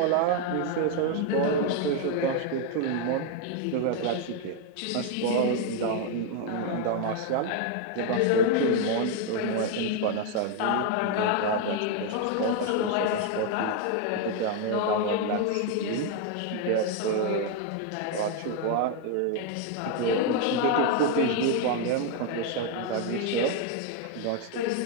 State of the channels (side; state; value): both; different; correlation 0.01